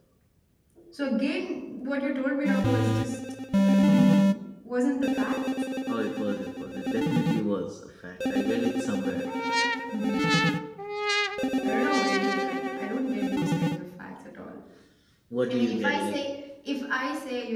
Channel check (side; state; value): both; identical; correlation 1.00